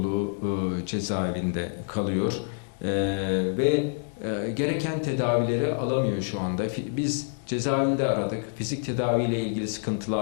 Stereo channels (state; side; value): silent; right; digital silence